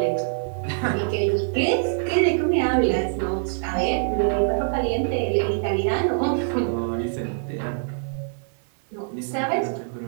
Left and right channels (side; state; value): left; silent; digital silence